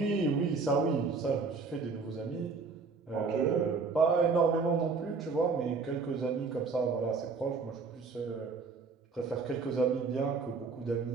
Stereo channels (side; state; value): left; quieter; 4.6 dB